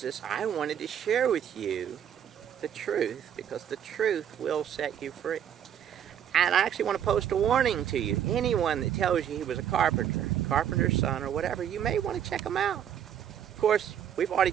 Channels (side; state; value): left; quieter; 9.5 dB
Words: I wanted to share with you the truth, because the truth will set you free. And I actually want to post a warning to you. Anyone that tells you he was a carpenter's son, or whatever, you may want to check him out. Of course, we've already